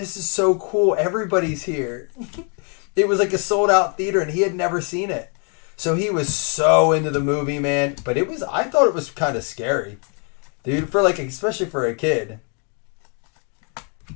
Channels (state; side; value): quieter; right; 38.6 dB